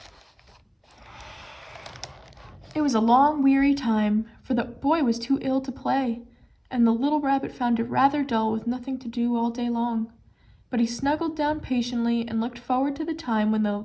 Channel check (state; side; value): identical; both; correlation 1.00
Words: It was a long, weary time, for the boy was too ill to play, and the little rabbit found it rather dull with nothing to do all day long. But he snuggled down patiently and looked forward to the time when the